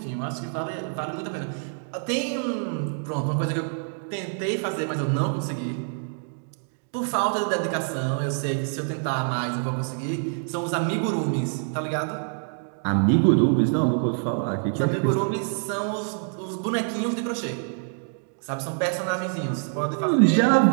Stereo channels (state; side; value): silent; left; 61 dB below the other